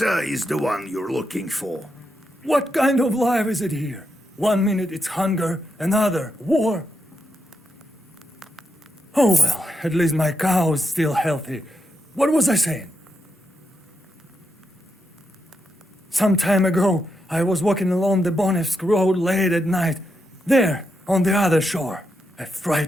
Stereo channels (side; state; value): both; normal; correlation 0.83